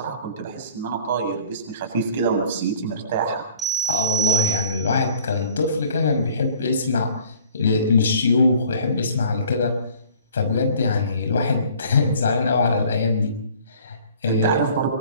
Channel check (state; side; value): inverted; both; correlation -0.52